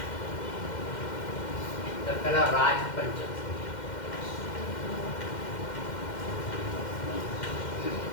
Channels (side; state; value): right; late; 2.1 ms